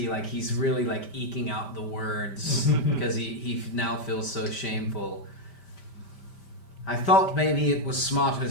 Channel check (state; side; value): late; right; 5.1 ms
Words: like he's really like eking out the words because he now feels so shameful. I thought maybe it was smarter